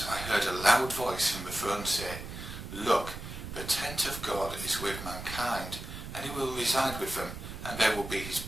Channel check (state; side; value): noise; right; rumble, 9 dB below the sound